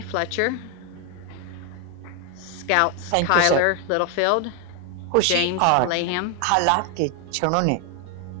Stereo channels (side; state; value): both; different; correlation 0.01